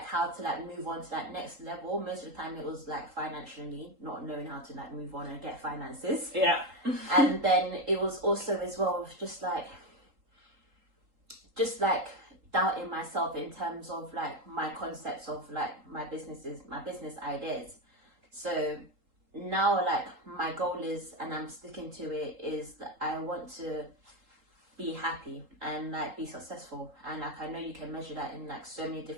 how to like move on to that next level. Most of the time it was like financially, not knowing how to like move on and get finances. Yeah. And then it was also as well just like doubting myself in terms of like my concepts of like my business ideas. So now like my goal is, and I'm sticking to it, is that I want to be happy and like be successful. And like I know you can measure that in like so many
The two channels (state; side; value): late; left; 3.8 ms